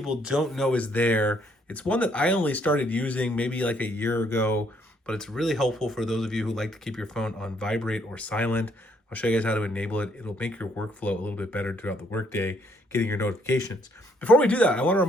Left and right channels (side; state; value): both; normal; correlation 0.68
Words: don't know is there. It's one that I only started using maybe like a year ago, but it's really helpful for those of you who like to keep your phone on vibrate or silent. I'll show you guys how to enable it. It'll make your workflow a little bit better throughout the workday, getting your notifications. Before we do that, I want to